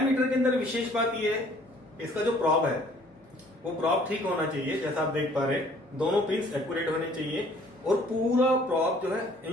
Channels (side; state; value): both; normal; correlation 0.57